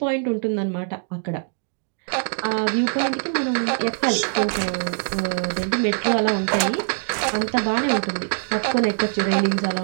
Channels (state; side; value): silent; left; digital silence